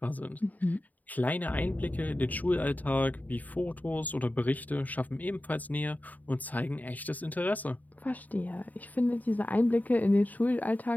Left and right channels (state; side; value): late; right; 0.078 ms